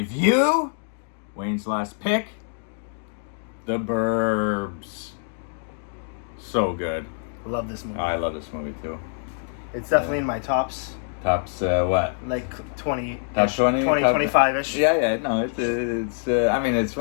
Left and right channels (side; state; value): right; silent; digital silence